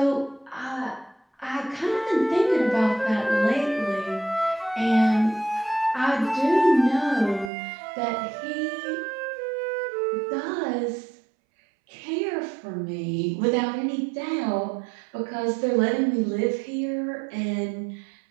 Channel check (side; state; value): left; drops out; at 7.5 s